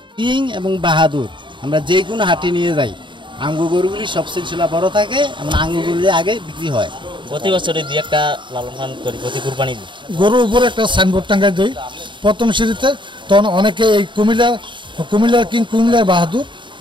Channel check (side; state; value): left; late; 0.23 ms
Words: কিং এবং বাহাদুর আমরা যে কোনো হাটে নিয়ে যাই, আঙ্গু গরুগুলি সব সিলসিলা বড় থাকে এবং আঙ্গুগুলি আগে বিক্রি হয়। প্রতি বছরে দুই একটা লালন পালন করি, প্রতি কুরবানি দিই। গরুর উপরে একটা সাইনবোর্ড টাঙ্গাই দিই প্রথম সিঁড়িতে, তখন অনেকে এই কুমিল্লার কিং কুমিল্লার বাহাদুর